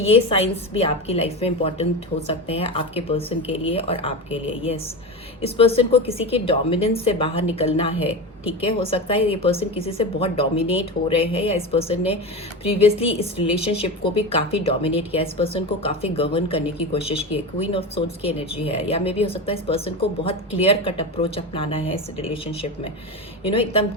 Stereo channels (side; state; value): both; normal; correlation 0.22